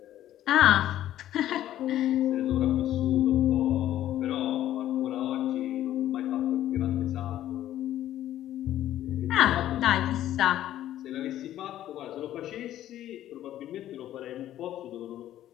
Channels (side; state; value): right; quieter; 12.6 dB